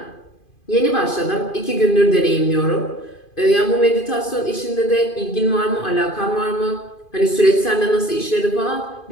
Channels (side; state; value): right; late; 2.5 ms